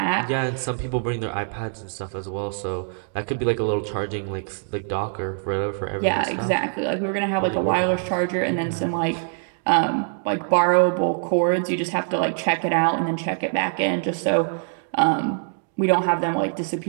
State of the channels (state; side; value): silent; left; digital silence